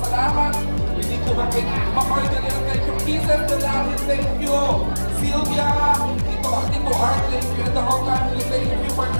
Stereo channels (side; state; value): both; inverted; correlation -1.00